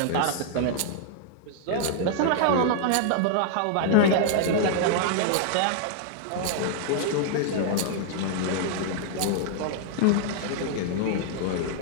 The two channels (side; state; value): both; different; correlation -0.01